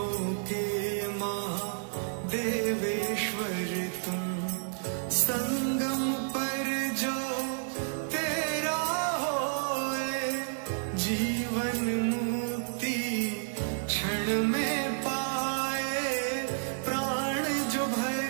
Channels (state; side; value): silent; left; digital silence